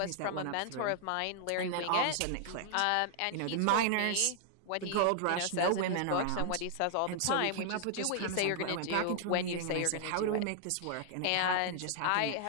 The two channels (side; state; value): both; different; correlation -0.01